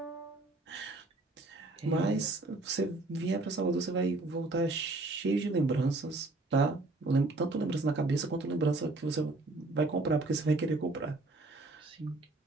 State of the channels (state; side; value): quieter; left; 3.0 dB